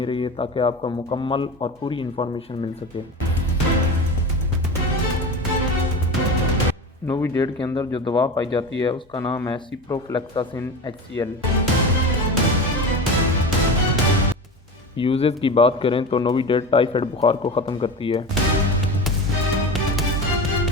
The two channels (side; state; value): both; normal; correlation 0.27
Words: रहिए ताकि आपको मुकम्मल और पूरी इन्फॉर्मेशन मिल सके। नोविडेट के अंदर जो दवा पाई जाती है उसका नाम है सिप्रोफ्लेक्सासिन HCl। यूजेस की बात करें तो नोविडेट टाइफाइड बुखार को ख़त्म करती है,